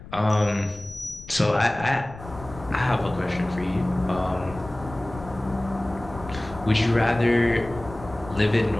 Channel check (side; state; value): left; noise; rumble, 16 dB below the sound